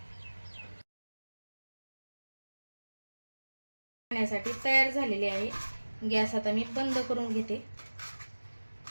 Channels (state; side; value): inverted; both; correlation -1.00